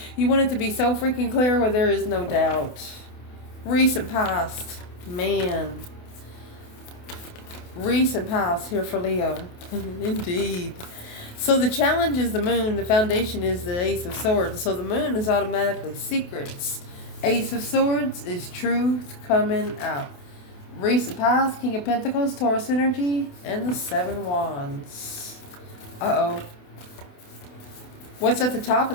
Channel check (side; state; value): right; late; 28 ms